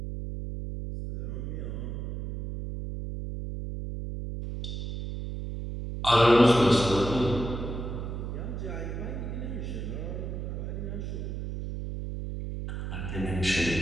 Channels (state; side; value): noise; right; hum, 5 dB below the sound